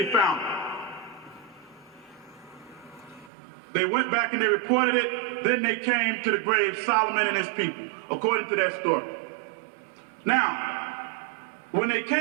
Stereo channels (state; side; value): drops out; left; at 3.3 s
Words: found him. They went back and they reported it. Then they came to the grave, Solomon and his people, according to that story. Now, when they